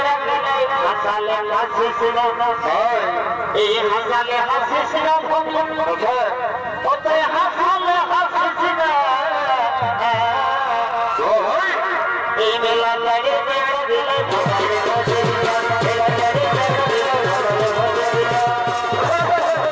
হাসিস না। এই হাসালে হাসিস না, অতই হাসালে হাসিস না। এই মেলা লাগে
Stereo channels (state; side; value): identical; both; correlation 1.00